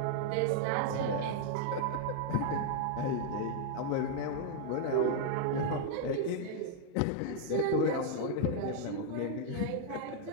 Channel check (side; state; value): both; different; correlation 0.00